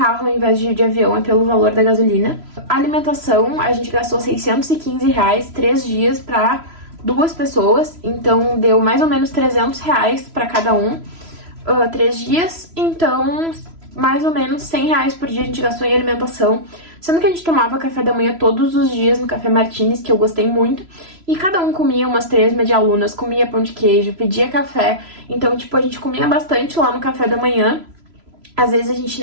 ao invés de ir de avião, é pelo valor da gasolina. A alimentação, a gente gastou R$615, 3 dias para 2 pessoas, então deu mais ou menos R$300 para cada um, 3 dias, então mais ou menos R$100 por dia a gente gastou em alimentação, sendo que a gente tomava café da manhã todos os dias no Café Martins, que eu gostei muito, e cada um comia umas 3 medialunas, comia pão de queijo, pedia café, então, tipo, a gente comia bastante lá no café da manhã. Às vezes a gente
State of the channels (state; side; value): late; left; 3.0 ms